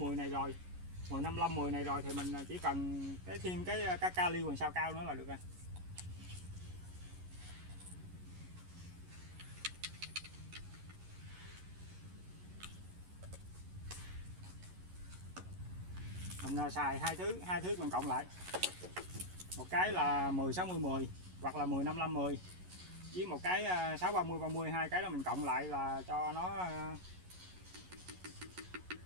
này rồi, 10 55 10 này rồi thì mình chỉ cần thêm cái kali hoàng sao cao nữa là được rồi. Mình xài hai thứ mình cộng lại, một cái là 10 60 10 hoặc là 10 55 10 với một cái 6 30 30, hai cái đó mình cộng lại là cho nó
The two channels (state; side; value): late; left; 11 ms